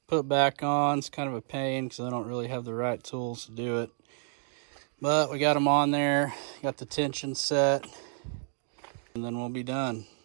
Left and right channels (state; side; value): silent; left; 58 dB below the other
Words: put back on. It's kind of a pain because I don't really have the right tools to do it. But we got them on there, got the tension set, and then we'll be done.